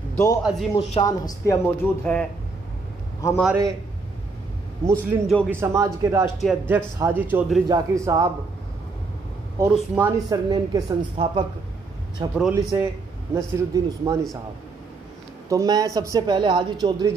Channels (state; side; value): quieter; left; 4.0 dB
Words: दो अज़ीमुश्शान हस्तियाँ मौजूद है। हमारे मुस्लिम जोगी समाज के राष्ट्रीय अध्यक्ष हाजी चौधरी जाकिर साहब और उस्मानी सरनेम के संस्थापक छपरौली से नसीरुद्दीन उस्मानी साहब। तो मैं सबसे पहले हाजी चौधरी